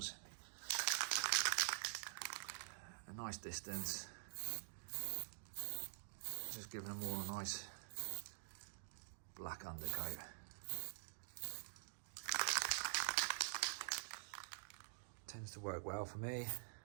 A nice distance. Just giving them all a nice black undercoat. Tends to work well for me.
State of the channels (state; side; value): silent; left; digital silence